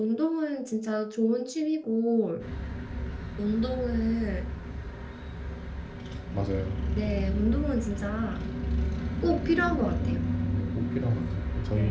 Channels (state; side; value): identical; both; correlation 1.00